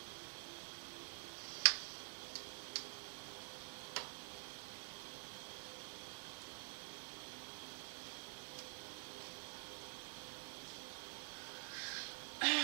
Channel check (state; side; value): silent; left; digital silence